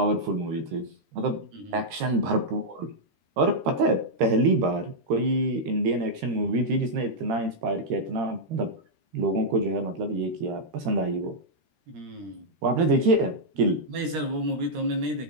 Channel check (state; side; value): late; left; 13 ms